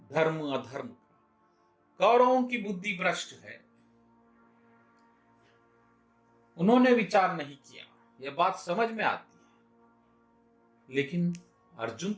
धर्म अधर्म का। कौरवों की बुद्धि भ्रष्ट है, उन्होंने विचार नहीं किया, यह बात समझ में आती है। लेकिन अर्जुन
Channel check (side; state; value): both; identical; correlation 1.00